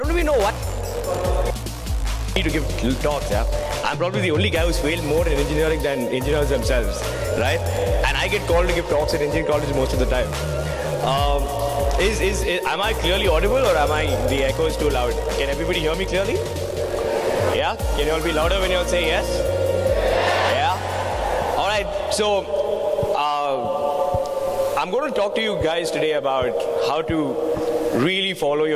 do we know what? To give talks, yeah. I'm probably the only guy who's failed more in engineering than engineers themselves, right? And I get called to give talks at engineering college most of the time. Am I clearly audible, or am I the echo is too loud? Can everybody hear me clearly? Yeah? Can you all be louder when you all say yes? Yeah? All right. So I'm going to talk to you guys today about how to really follow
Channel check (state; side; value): identical; both; correlation 1.00